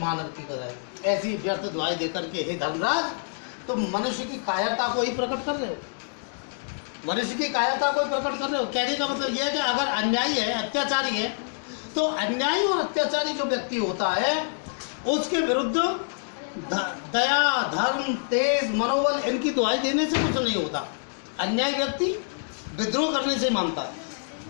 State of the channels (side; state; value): right; silent; digital silence